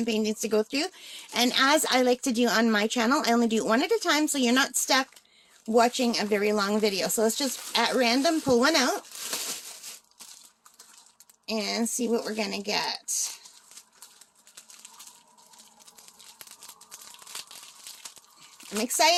paintings to go through, and as I like to do on my channel, I only do one at a time, so you're not stuck watching a very long video. So let's just, at random, pull one out and see what we're gonna get. I'm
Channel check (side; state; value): both; identical; correlation 1.00